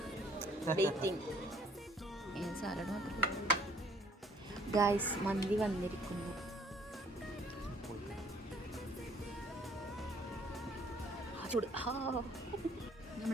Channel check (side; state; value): both; normal; correlation 0.61